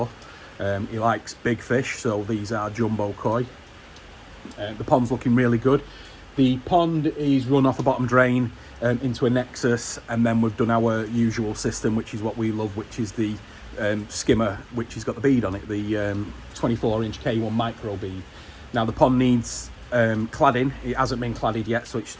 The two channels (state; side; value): identical; both; correlation 1.00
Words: He likes big fish, so these are jumbo koi. The pond's looking really good. The pond is run off a bottom drain into a Nexus, and then we've done our usual system, which is what we love, which is the skimmer, which has got the bead on it, the 24-inch K1 Micro Bead. Now the pond needs cladding. It hasn't been cladded yet, so it's